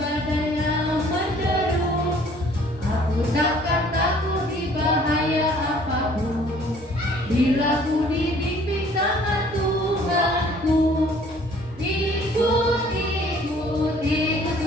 yang menderu. Aku takkan takut di bahaya apapun, bila ku dibimbing tangan Tuhanku. Ikut, ikut, ikut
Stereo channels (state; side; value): normal; both; correlation 0.56